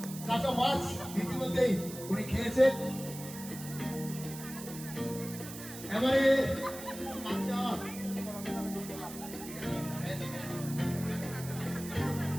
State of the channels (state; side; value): noise; right; hiss, 12 dB below the sound